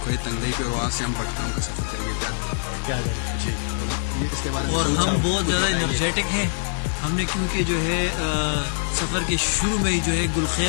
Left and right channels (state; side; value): silent; right; digital silence